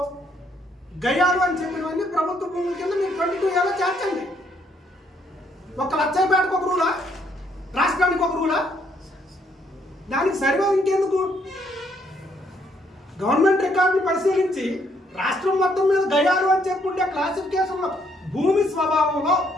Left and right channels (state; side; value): normal; both; correlation 0.70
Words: గయాలు అని చెప్పినవన్నీ ప్రభుత్వ భూముల కింద మీరు 22Aలో చేర్చండి. ఒక లచ్చయ్యపేటకు ఒక రూలా, రాష్ట్రానికి ఒక రూలా? దానికి సర్వే ఇంకెందుకు? గవర్నమెంట్ రికార్డును పరిశీలించి రాష్ట్రం మొత్తం మీద గయాలు అని చెప్పి ఉండే క్లాసిఫికేషన్లో భూమి స్వభావంలో